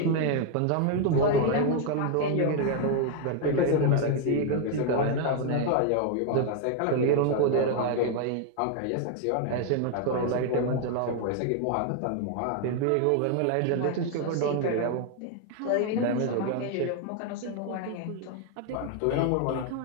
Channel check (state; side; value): different; both; correlation 0.00